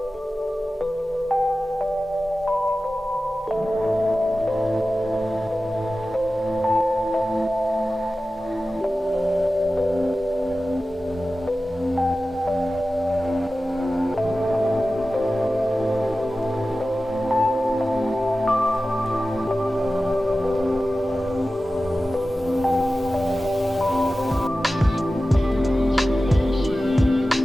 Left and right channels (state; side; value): normal; both; correlation 0.95